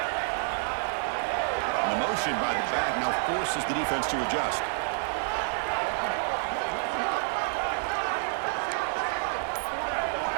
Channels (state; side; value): silent; left; 59 dB below the other